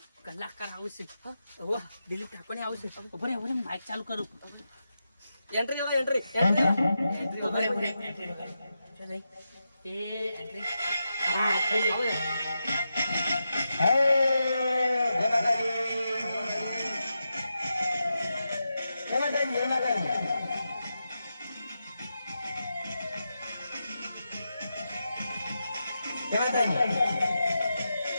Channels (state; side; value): inverted; both; correlation -0.88